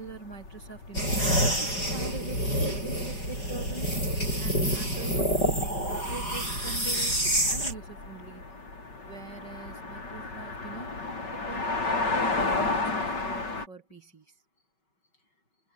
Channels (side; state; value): right; late; 5.3 ms